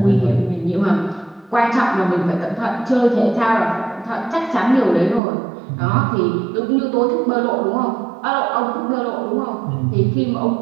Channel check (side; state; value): left; drops out; at 5.2 s